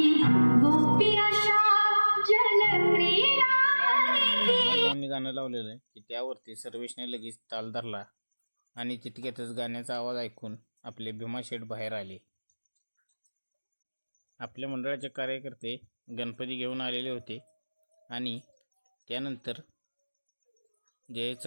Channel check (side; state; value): both; inverted; correlation -1.00